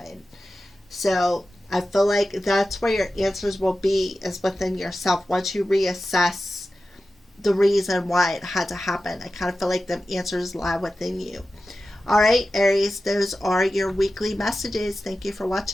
So I feel like that's where your answers will be, is within yourself. Once you reassess the reason why it had to happen, I kind of feel like the answers lie within you. All right, Aries, those are your weekly messages. Thank you for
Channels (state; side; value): normal; both; correlation 0.93